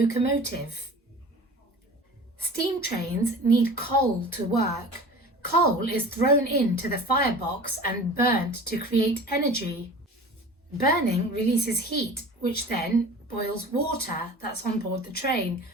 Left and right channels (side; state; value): both; normal; correlation 0.39